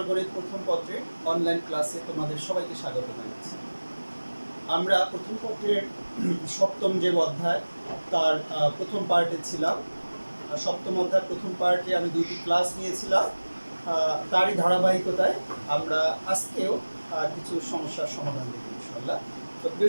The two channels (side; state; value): both; inverted; correlation -1.00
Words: গণিত প্রথম পত্রের অনলাইন ক্লাসে তোমাদের সবাইকে স্বাগত জানাচ্ছি। আমরা প্রথম পত্রের সপ্তম যে অধ্যায় তার প্রথম পার্টে ছিলাম। সপ্তম অধ্যায় প্রথম পার্টে আমি দুইটি ক্লাস নিয়েছিলাম। তারই ধারাবাহিকতায় আমরা আজকেও কিছু সমস্যার সমাধান দেখব ইনশাআল্লাহ। তো